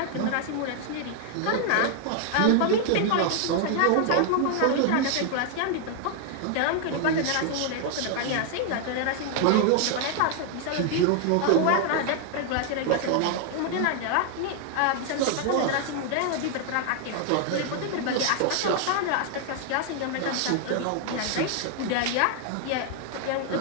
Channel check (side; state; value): both; different; correlation 0.00